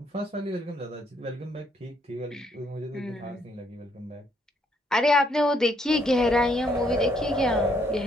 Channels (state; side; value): normal; both; correlation 0.71